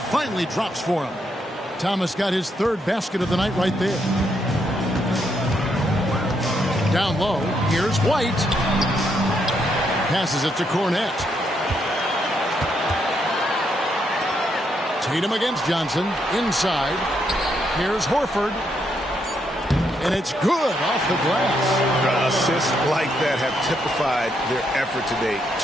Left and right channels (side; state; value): both; normal; correlation 0.77